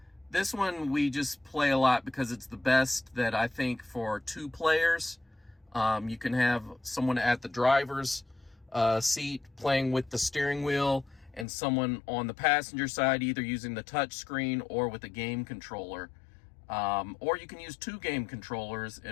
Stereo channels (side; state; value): right; drops out; at 11.5 s